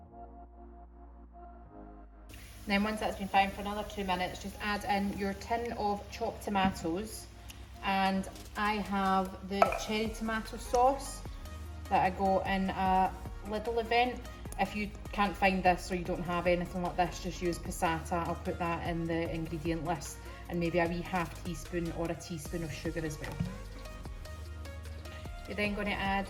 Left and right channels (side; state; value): both; identical; correlation 1.00